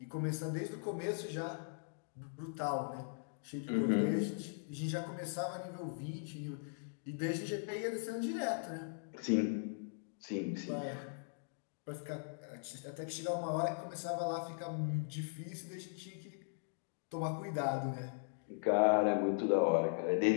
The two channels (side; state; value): right; silent; digital silence